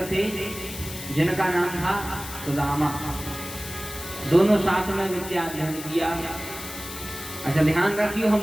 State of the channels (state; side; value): noise; left; hiss, 11 dB below the sound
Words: थे जिनका नाम था सुदामा। दोनों साथ में विद्या अध्ययन किया। अच्छा ध्यान रखियो, हम